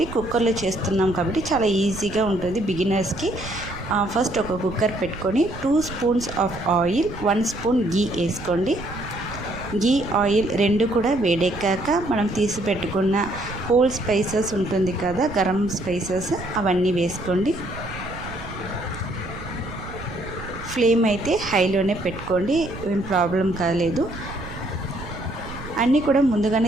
కుక్కర్లో చేస్తున్నాం కాబట్టి చాలా ఈజీగా ఉంటుంది బిగినర్స్కి. ఫస్ట్ ఒక కుక్కర్ పెట్టుకొని 2 స్పూన్స్ ఆఫ్ ఆయిల్, 1 స్పూన్ గీ వేసుకోండి. గీ, ఆయిల్ రెండు కూడా వేడెక్కాక మనం తీసి పెట్టుకున్న హోల్ స్పైసెస్ ఉంటుంది కదా, గరం స్పైసెస్, అవన్నీ వేసుకోండి. ఫ్లేమ్ అయితే హైలోనే పెట్టుకోండి, ఏం ప్రాబ్లం కాలేదు. అన్నీ కూడా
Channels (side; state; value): right; noise; rumble, 12 dB below the sound